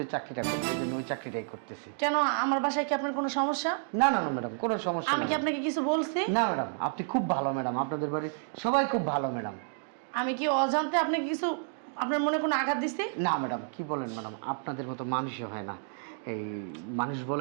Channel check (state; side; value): silent; left; digital silence